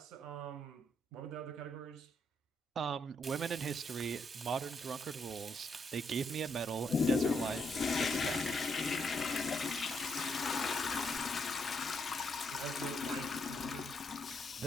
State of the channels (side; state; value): both; normal; correlation 0.77